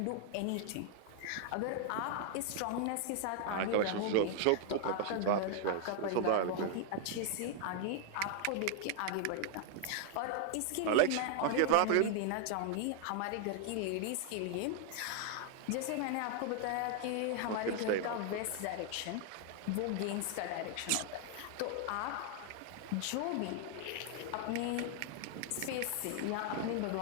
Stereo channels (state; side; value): different; both; correlation 0.00